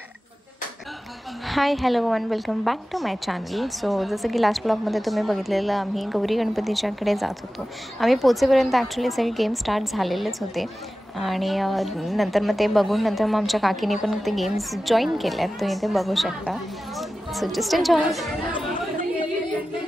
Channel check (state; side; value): normal; both; correlation 0.95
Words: Hi hello one welcome back to my channel. So जसं की लास्ट ब्लॉगमध्ये तुम्ही बघितलेलं आम्ही गौरी गणपतीच्याकडे जात होतो. आम्ही पोचेपर्यंत ॲक्च्युली सगळे गेम स्टार्ट झालेलेच होते आणि नंतर मग ते बघून नंतर मग आमच्या काकीने पण ते गेम्स जॉईन केले आहेत. तुम्ही ते बघू शकता. So just enjoy.